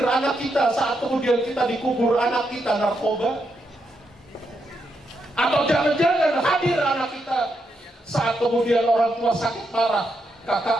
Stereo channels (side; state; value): both; normal; correlation 0.81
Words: anak kita saat kemudian kita dikubur, anak kita narkoba. Atau jangan-jangan hadir anak kita saat kemudian orang tua sakit parah,